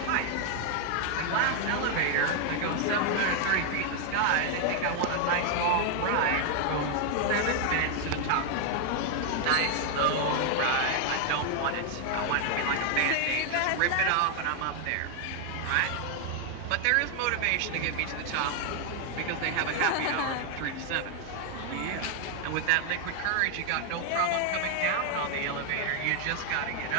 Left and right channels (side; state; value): both; different; correlation 0.01